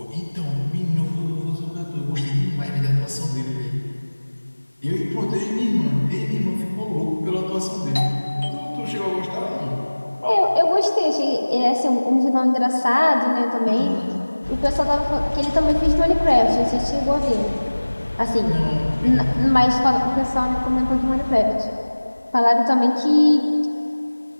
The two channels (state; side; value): inverted; both; correlation -1.00